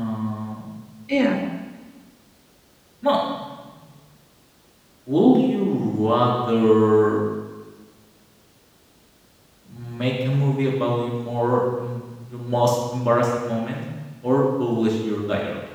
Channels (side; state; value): both; identical; correlation 1.00